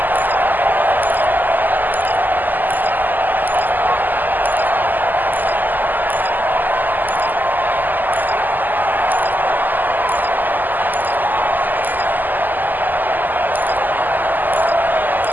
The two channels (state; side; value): late; left; 0.086 ms